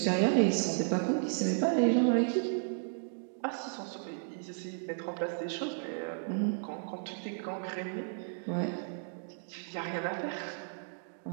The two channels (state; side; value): silent; left; digital silence